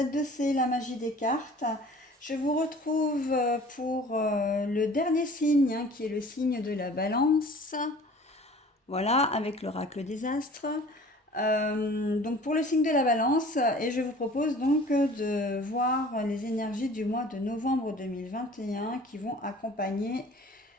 la magie des cartes. Je vous retrouve pour le dernier signe, qui est le signe de la balance. Voilà, avec l'oracle des astres. Donc pour le signe de la balance, et je vous propose donc de voir les énergies du mois de novembre 2021 qui vont accompagner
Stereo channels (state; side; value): normal; both; correlation 0.47